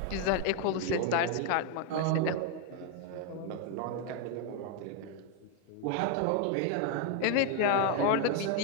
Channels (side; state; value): both; different; correlation 0.01